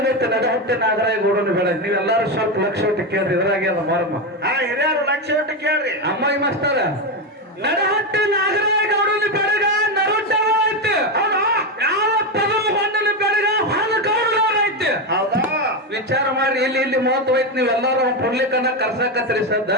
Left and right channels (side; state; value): both; normal; correlation 0.11